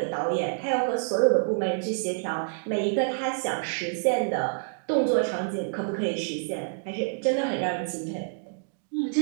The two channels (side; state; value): left; silent; digital silence